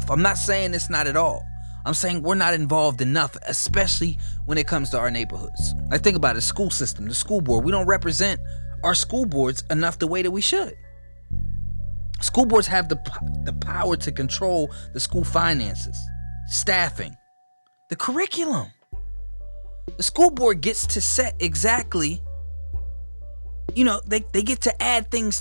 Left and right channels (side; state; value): both; inverted; correlation -1.00